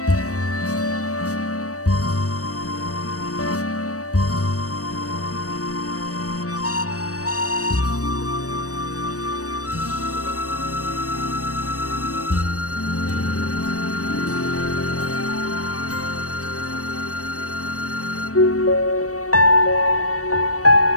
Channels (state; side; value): late; right; 0.66 ms